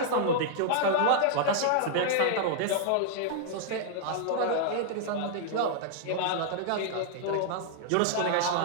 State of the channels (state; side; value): different; both; correlation -0.01